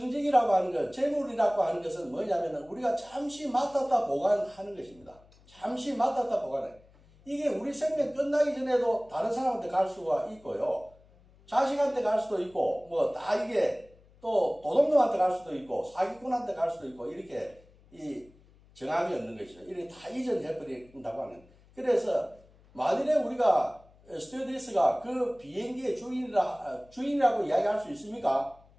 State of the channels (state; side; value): noise; left; hum, 27 dB below the sound